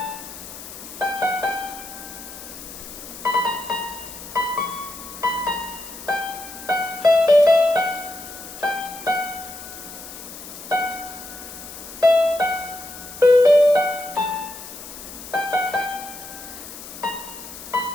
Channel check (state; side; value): noise; left; hiss, 13 dB below the sound